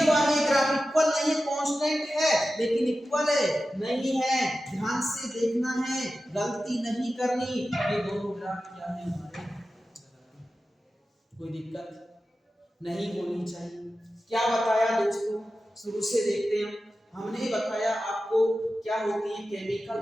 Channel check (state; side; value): normal; both; correlation 0.93